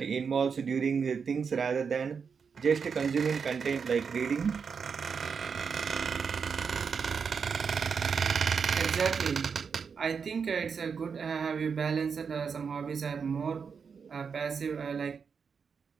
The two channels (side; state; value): left; quieter; 6.0 dB